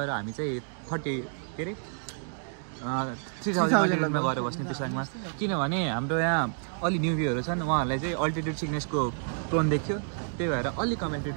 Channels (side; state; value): left; silent; digital silence